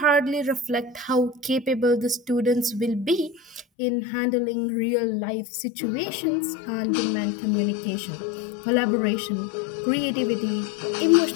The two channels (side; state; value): right; drops out; at 3.7 s